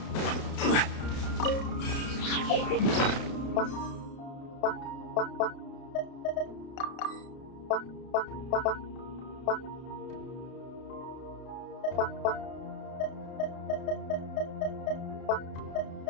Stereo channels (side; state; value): right; late; 32 ms